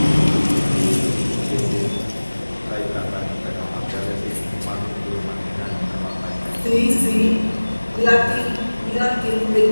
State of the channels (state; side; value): inverted; both; correlation -1.00